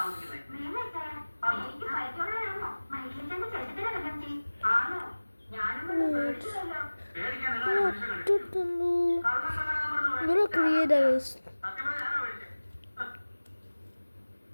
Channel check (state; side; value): inverted; both; correlation -1.00